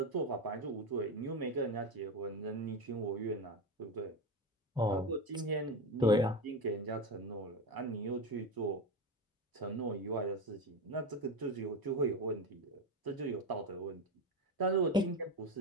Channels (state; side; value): normal; both; correlation 0.18